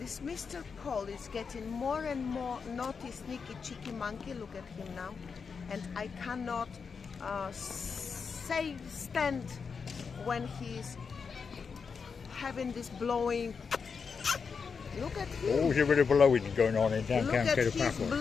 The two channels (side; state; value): right; quieter; 5.6 dB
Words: Mr. Paul is getting more and more naughty, sneaky, cheeky monkey. Look at him now. And I cannot stand when he's having this blowing. Look at him. Oh, there's a bit of blowing going on in downtown Look at Paphos. his